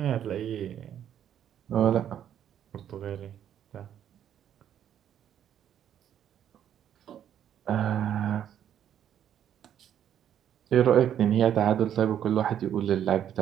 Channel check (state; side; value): quieter; left; 10.0 dB